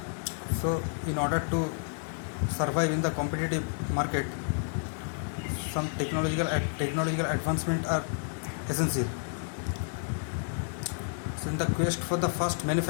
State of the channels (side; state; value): right; silent; digital silence